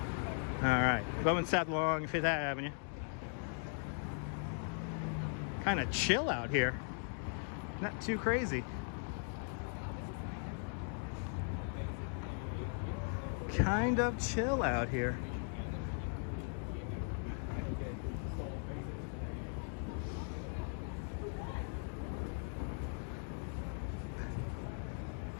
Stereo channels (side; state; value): right; silent; 52 dB below the other